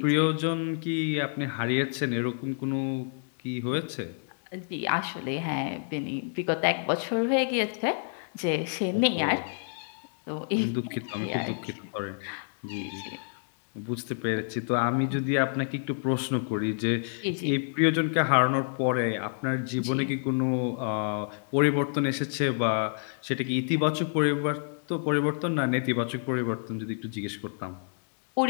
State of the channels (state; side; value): silent; right; digital silence